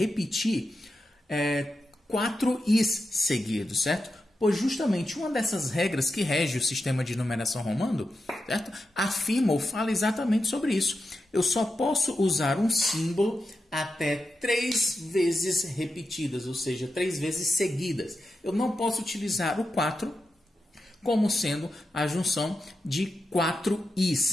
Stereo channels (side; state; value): both; normal; correlation 0.89